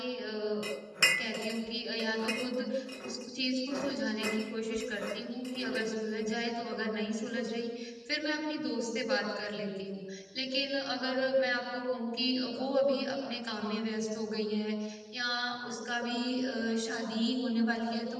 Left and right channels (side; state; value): both; identical; correlation 1.00